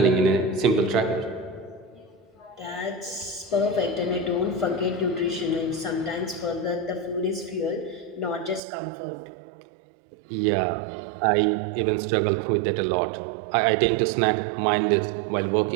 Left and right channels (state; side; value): drops out; left; at 8.6 s